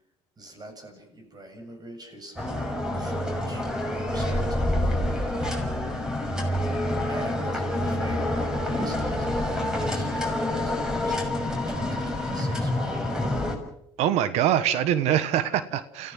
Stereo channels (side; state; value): both; normal; correlation 0.61